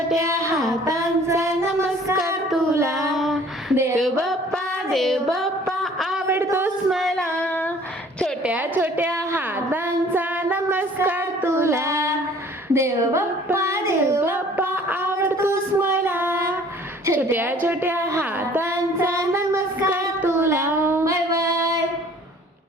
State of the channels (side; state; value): both; normal; correlation 0.53